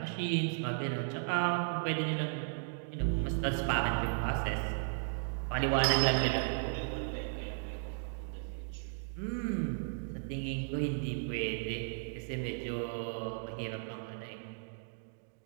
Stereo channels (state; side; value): silent; left; digital silence